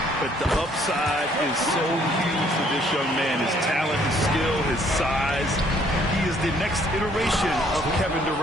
But the upside is so huge for this young man. His talent, his skill, his size. He is the next iteration of Kevin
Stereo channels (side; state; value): both; normal; correlation 0.63